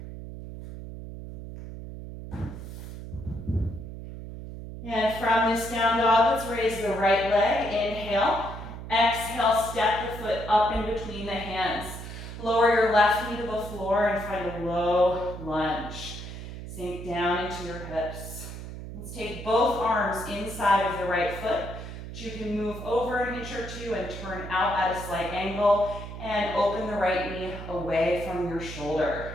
And from this down dog, let's raise the right leg. Inhale. Exhale, step the foot up in between the hands. Lower your left knee to the floor and find a low lunge. Sink down into your hips. Let's take both arms inside of the right foot. You can move over an inch or two and turn out at a slight angle and open the right knee away from your shoulder.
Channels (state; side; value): noise; right; hum, 10 dB below the sound